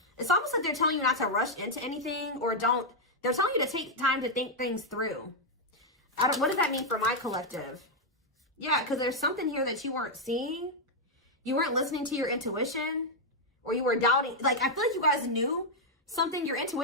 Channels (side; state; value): both; normal; correlation -0.01